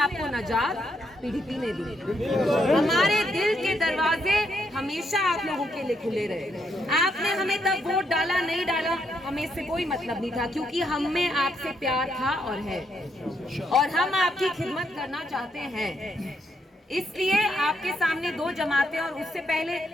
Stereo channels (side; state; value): both; normal; correlation 0.76